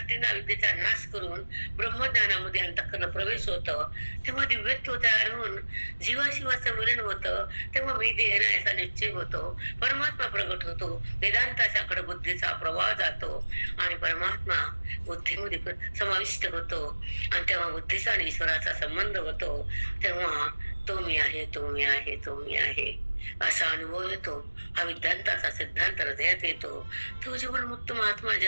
अविद्येचा नाश करून ब्रह्मज्ञानामध्ये अंतःकरण प्रवेश होतं. तेव्हा दिव्यत्व तयार होऊन जीवाशिवाचं मिलन होतं. तेव्हा मी देह नाही असा निश्चय होतो, परमात्मा प्रगट होतो, वेदांताच्याकडे बुद्धीचा प्रवाह जातो आणि परमात्मा बुद्धीमध्ये समाविष्ट होतो. आणि तेव्हा बुद्धीचा आणि ईश्वराचा संबंध होतो. तेव्हा तो मी आहे, तो मी आहे, तो मी आहे असा अनुभव येतो. हा विद्यार्थाचा सिद्धांत हृदयात येतो. तो जीवनमुक्त महात्मा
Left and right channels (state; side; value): inverted; both; correlation -1.00